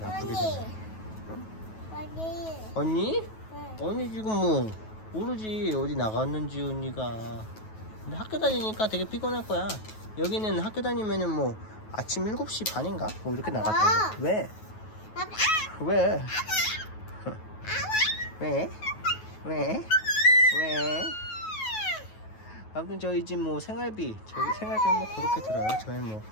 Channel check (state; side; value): late; right; 9.3 ms